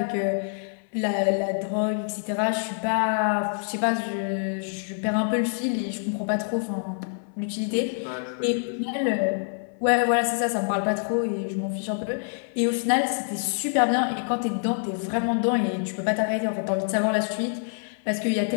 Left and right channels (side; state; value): right; silent; 61 dB below the other